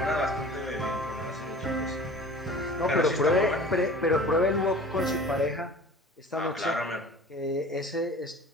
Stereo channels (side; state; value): both; normal; correlation 0.42